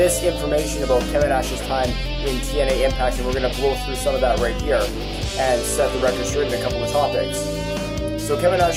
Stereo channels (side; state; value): both; identical; correlation 1.00